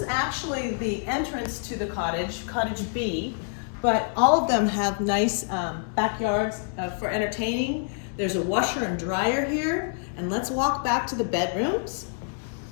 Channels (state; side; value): silent; right; 60 dB below the other